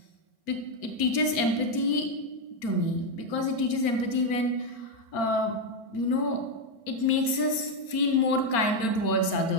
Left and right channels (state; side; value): late; right; 4.4 ms